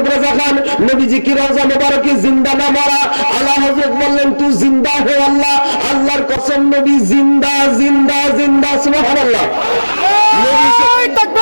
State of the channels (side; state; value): both; inverted; correlation -1.00